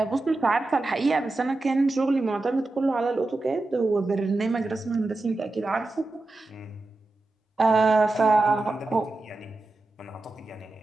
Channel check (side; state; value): left; quieter; 3.1 dB